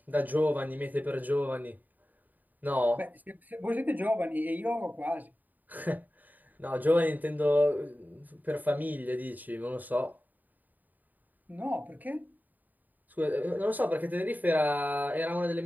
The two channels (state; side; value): late; left; 0.085 ms